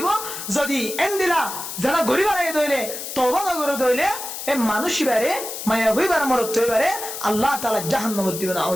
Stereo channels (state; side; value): noise; left; hiss, 8 dB below the sound